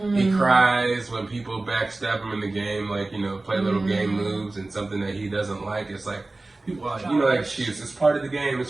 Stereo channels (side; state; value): left; quieter; 3.0 dB